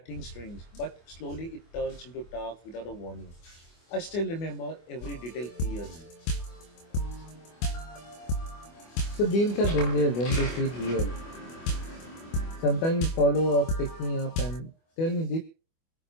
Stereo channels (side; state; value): right; late; 25 ms